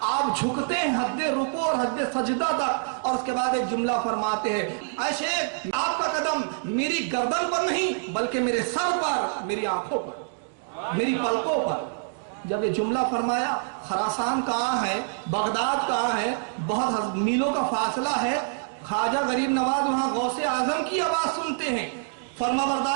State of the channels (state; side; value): silent; left; digital silence